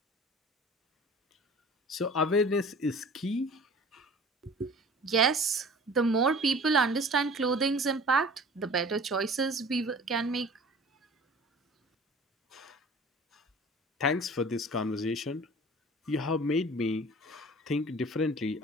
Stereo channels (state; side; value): normal; both; correlation 0.44